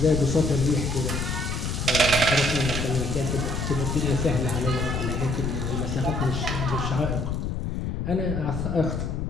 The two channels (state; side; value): noise; left; rumble, 2 dB below the sound